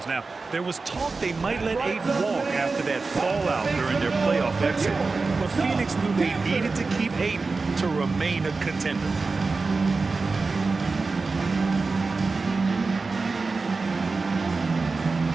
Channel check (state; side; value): quieter; left; 4.0 dB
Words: Now, there was talk they might let Ayton walk after that fallout during their playoff exit. But Phoenix knew they needed to keep Ayton to remain a contender.